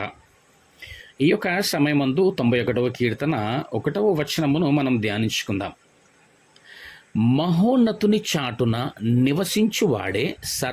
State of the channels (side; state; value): both; identical; correlation 1.00